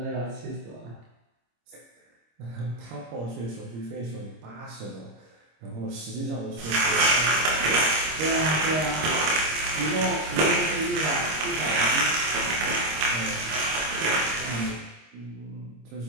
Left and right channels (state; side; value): late; left; 26 ms